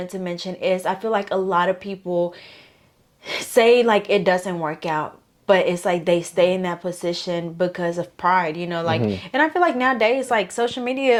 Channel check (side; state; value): both; identical; correlation 1.00